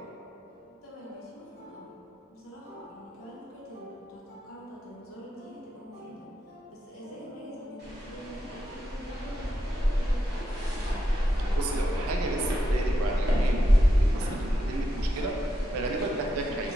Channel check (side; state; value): both; normal; correlation 0.84